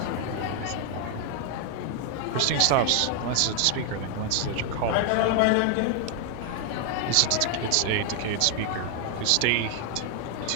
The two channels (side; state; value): both; different; correlation 0.00